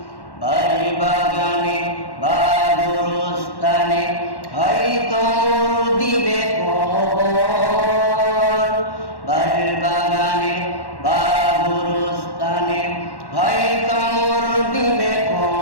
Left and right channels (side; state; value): right; late; 1.1 ms